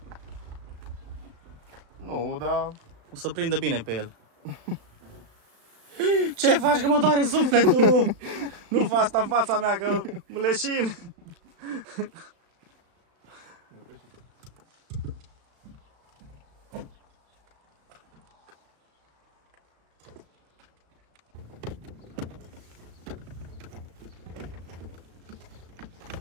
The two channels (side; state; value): left; late; 35 ms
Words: Nu, dar... O să prindă bine pe el. Ce faci, că mă doare sufletul? Nu fă asta în fața mea, că mă leșin.